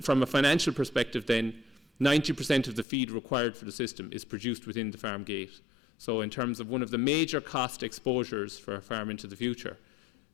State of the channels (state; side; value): drops out; right; at 2.9 s